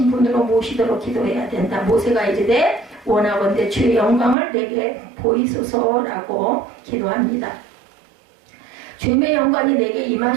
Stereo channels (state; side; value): drops out; left; at 4.4 s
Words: 분으로 모시도록 기도해야 된다. 모세가 이르되 원하건대 주의 영광을 내게 보이소서라고 기도합니다. 주님의 영광이 내게